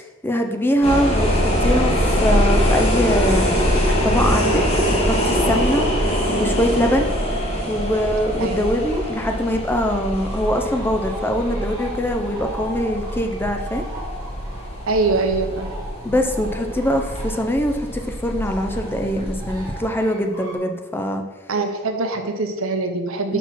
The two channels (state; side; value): normal; both; correlation 0.59